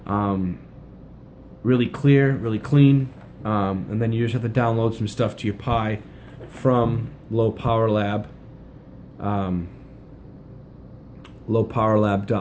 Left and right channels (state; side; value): identical; both; correlation 1.00